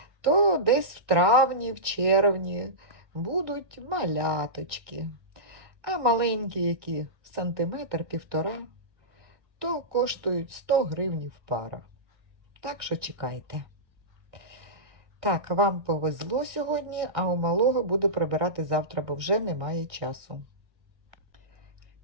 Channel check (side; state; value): left; late; 1.7 ms